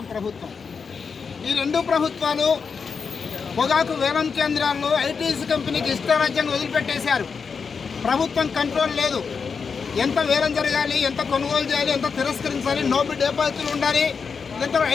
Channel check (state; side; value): quieter; right; 5.6 dB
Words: ప్రభుత్వం. ఈ రెండు ప్రభుత్వాలు పొగాకు వేలం కేంద్రాల్లో ఐటీసీ కంపెనీకి ఇష్టారాజ్యంగా వదిలిపెట్టేశారు. ప్రభుత్వం కంట్రోల్ లేదు. ఎంత వేలం జరగాలి, ఎంత కొనుగోలు చేయాలి, ఎంత తిరస్కరించాలి, నోబెట్ డిపాజిట్లు ఉండాలి. ఇంత